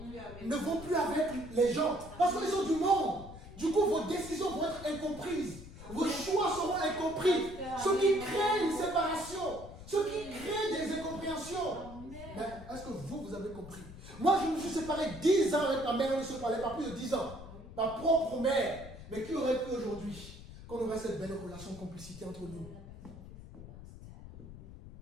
ne vont plus avec les gens. Parce qu'ils sont du monde. Du coup, vos décisions vont être incomprises. Vos choix seront incompris. Ce qui crée une séparation. Ce qui crée des incompréhensions. Mais est-ce que vous avez compris? Moi, je me suis séparé 10 ans avec ma mère. On ne se parlait pas plus de 10 ans. Ma propre mère. Mais qui aurait cru aujourd'hui qu'on aurait cette belle relation de complicité entre nous?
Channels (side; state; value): left; noise; rumble, 14 dB below the sound